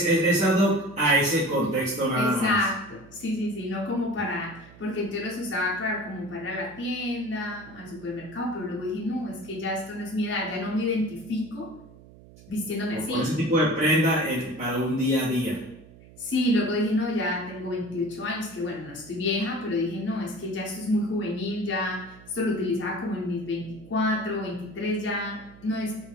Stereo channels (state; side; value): noise; right; hum, 21 dB below the sound